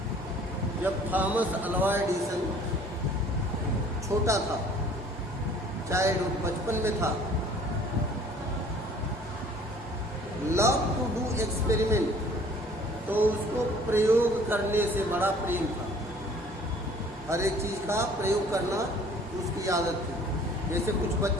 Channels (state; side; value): normal; both; correlation 0.53